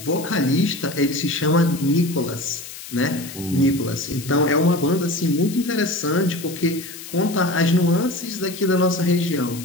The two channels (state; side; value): noise; left; hiss, 13 dB below the sound